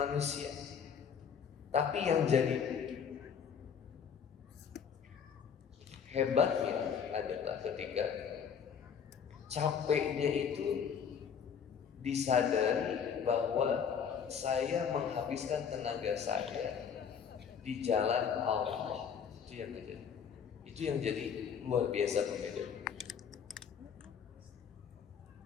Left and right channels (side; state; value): right; quieter; 7.2 dB